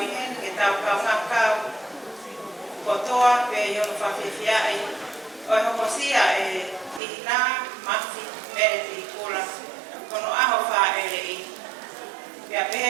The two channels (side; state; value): left; drops out; at 7.0 s